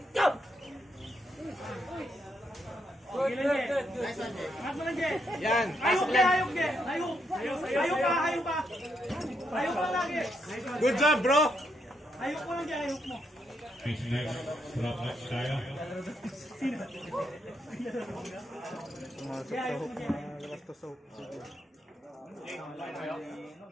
Go! Yan. Ayok ka, ayok ka. Ayok pa. Ayok pa lagi. Good job, bro. Ayok mo lang dyan, ayok mo. Next next. Drop match tayo.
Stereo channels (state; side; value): normal; both; correlation 0.78